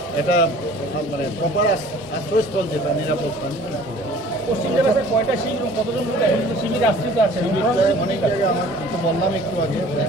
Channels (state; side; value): normal; both; correlation 0.50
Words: এটা মানে প্রপার আশ্রয়স্থল, যেটা নিরাপদ স্থান। পশ্চিম জেলাতে কয়টা শিবির এবং কতজন শিবির আশ্রিত আছে? অনেক জায়গায় আমার তো বললাম একটু আগে,